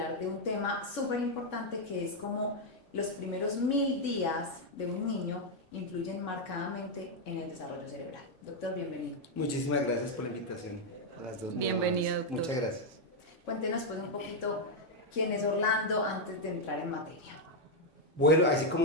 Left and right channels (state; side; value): normal; both; correlation 0.00